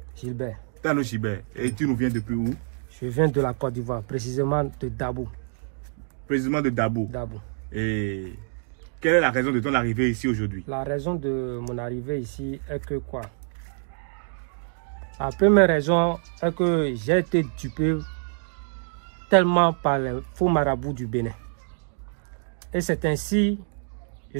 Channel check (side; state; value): left; silent; digital silence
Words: Gilbert. Tano Gilbert. Et tu nous viens depuis où? Je viens de la Côte d'Ivoire, précisément de Dabou. Précisément de Dabou. Dabou. Et quelle est la raison de ton arrivée ici aujourd'hui? La raison de mon arrivée ici est que quoi? La première raison est que j'ai été dupé tellement par les faux marabouts du Bénin. Et c'est ainsi, je